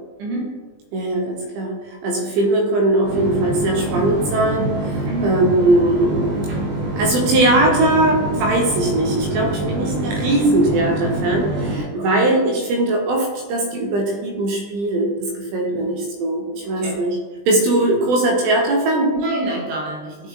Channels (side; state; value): left; late; 20 ms